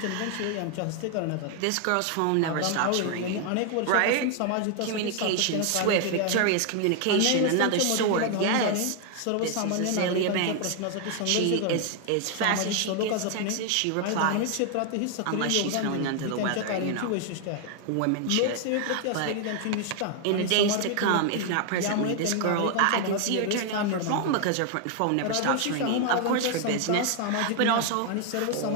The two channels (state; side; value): different; both; correlation 0.00